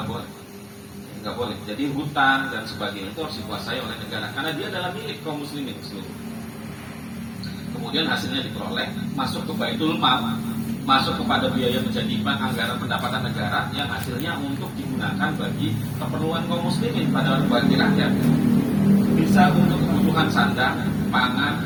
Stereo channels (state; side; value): identical; both; correlation 1.00